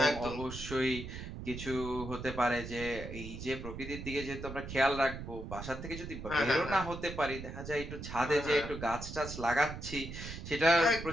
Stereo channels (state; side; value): noise; right; rumble, 9 dB below the sound